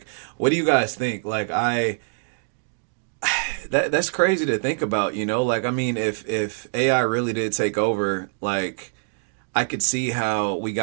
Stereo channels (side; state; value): left; silent; digital silence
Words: what do you guys think? Like, that's crazy to think about, like, I mean, if AI really did take over, like, I could see how we